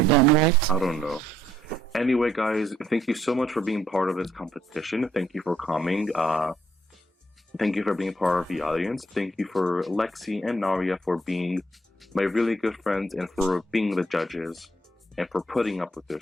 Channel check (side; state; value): both; normal; correlation 0.69